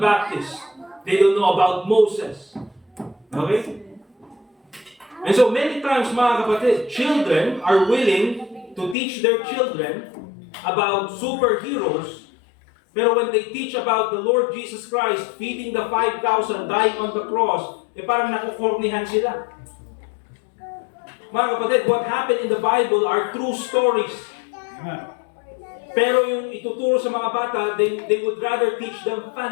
Baptist. They don't know about Moses. Okay? And so many times, mga kapatid, children are willing to teach their children about superheroes, pero when they teach about the Lord Jesus Christ feeding the 5,000, dying on the cross, parang nakukornihan sila. Mga kapatid, what happened in the Bible are true stories. Pero yung ituturo sa mga bata, they would rather teach them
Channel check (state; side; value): drops out; right; at 9.0 s